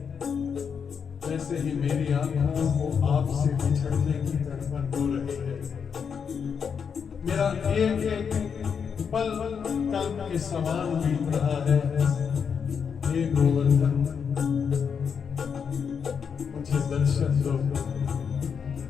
वैसे ही मेरी आंखों को आपसे बिछड़ने की तड़पन हो रही है। मेरा एक एक पल कल्प के समान बीत रहा है। हे गोवर्धन, मुझे दर्शन दो।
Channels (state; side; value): quieter; right; 6.7 dB